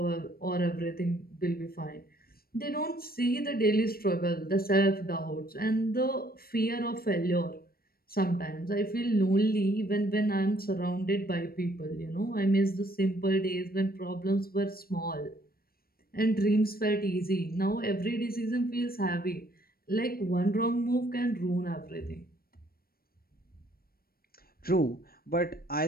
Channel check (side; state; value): right; late; 0.44 ms